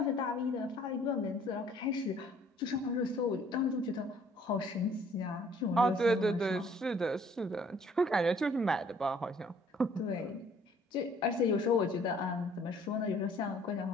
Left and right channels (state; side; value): normal; both; correlation 0.58